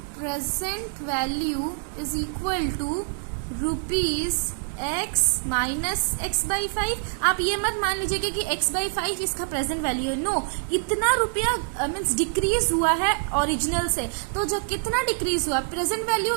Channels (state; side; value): silent; left; digital silence